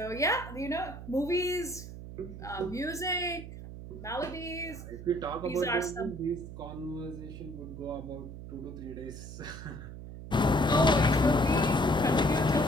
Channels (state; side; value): noise; right; hum, 11 dB below the sound